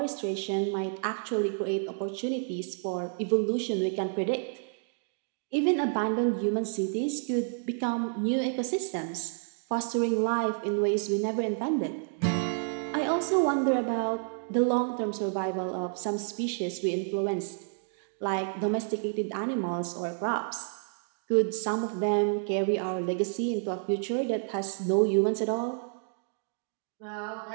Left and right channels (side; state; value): left; silent; digital silence